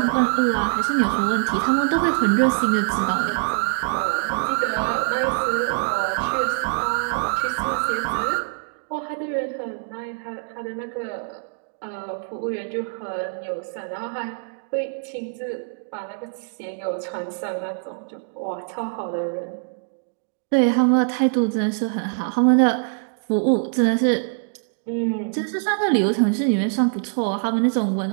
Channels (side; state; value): left; silent; digital silence